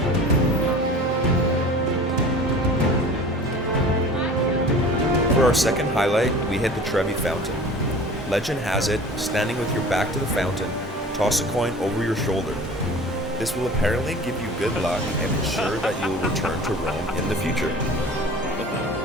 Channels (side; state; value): both; normal; correlation 0.41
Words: For our second highlight, we hit the Trevi Fountain. Legend has it, standing with your back to the fountain, toss a coin over your shoulder. This will apparently give you good luck and ensure that you will return to Rome in the future.